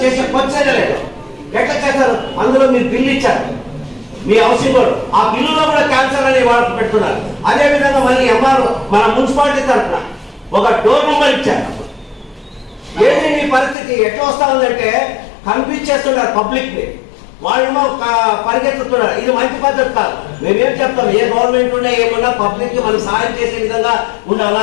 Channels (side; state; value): right; drops out; at 13.8 s